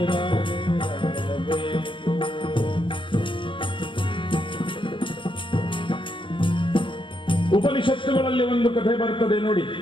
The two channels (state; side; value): late; right; 0.25 ms